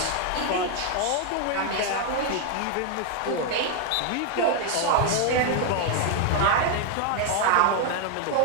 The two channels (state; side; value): different; both; correlation 0.00